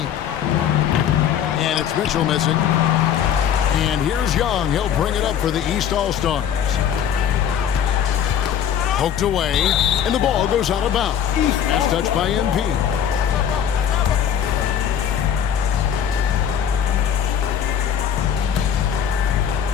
And it's Mitchell missing. And here's Young. He'll bring it up for the East All-Stars. Poked away, and the ball goes out of bounds. Pass touched by MP.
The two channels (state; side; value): quieter; right; 8.9 dB